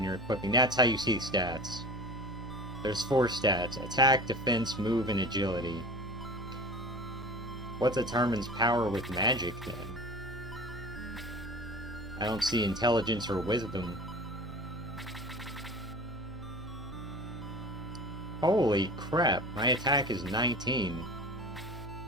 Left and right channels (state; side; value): normal; both; correlation 0.37